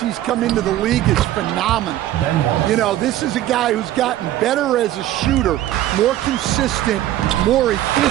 he's come into the league is phenomenal. You know, this is a guy who's gotten better as a shooter, more consistent, more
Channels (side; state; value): left; quieter; 13.6 dB